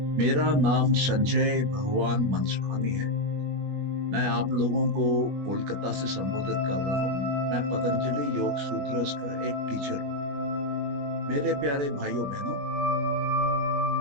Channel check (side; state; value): left; late; 21 ms